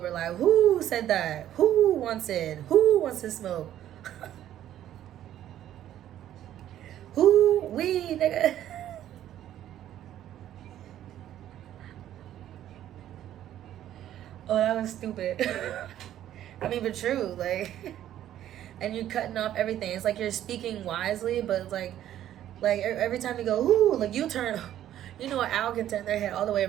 Like, who said that? Who wants it? Who wants to smoke? Who? We, nigga. Oh, that was stupid. I mean, but true. Like, and you're cutting off everything. It's like you're speaking wisely, but it's like every time you go, ooh, like you turn. You know, an owl can turn their head all the way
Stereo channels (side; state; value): left; quieter; 11.9 dB